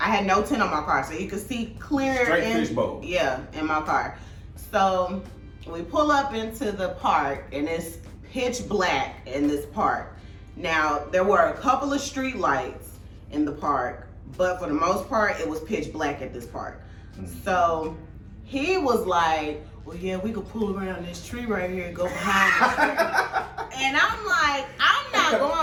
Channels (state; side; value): identical; both; correlation 1.00